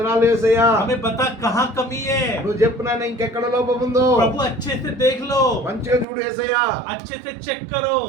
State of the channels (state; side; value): drops out; left; at 6.1 s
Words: యేసయ్యా, हमें बता कहाँ कमी है। నువ్వు చెప్పు నాయన ఇంకెక్కడ లోపం ఉందో प्रभु अच्छे से देख लो, మంచిగా చూడు యేసయ్యా, अच्छे से चेक करो,